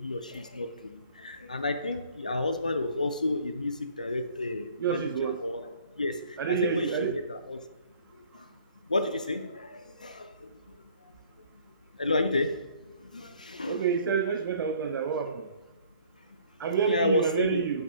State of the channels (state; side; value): inverted; both; correlation -0.56